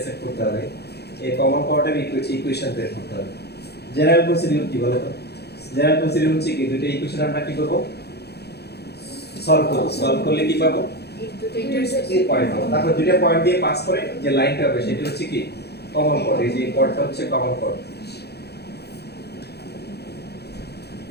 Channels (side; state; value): right; late; 0.48 ms